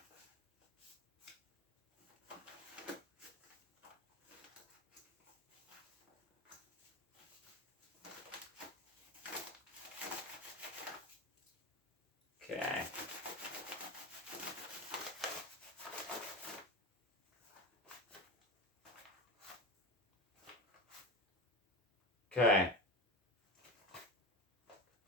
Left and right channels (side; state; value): both; normal; correlation 0.26